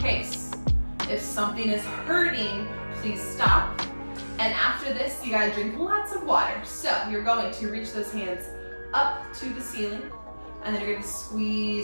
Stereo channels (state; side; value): inverted; both; correlation -1.00